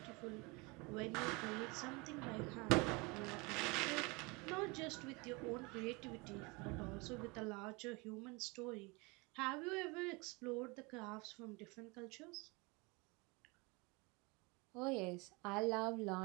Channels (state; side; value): quieter; left; 27.0 dB